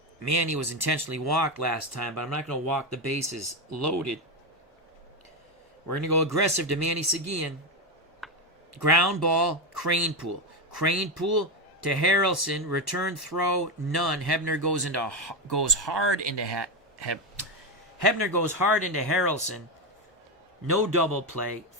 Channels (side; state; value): both; normal; correlation 0.10